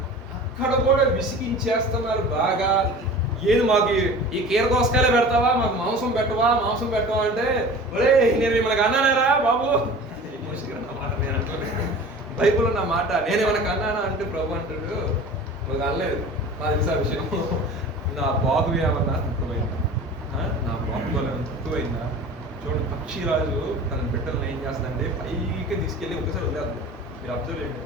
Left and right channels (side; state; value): both; normal; correlation 0.39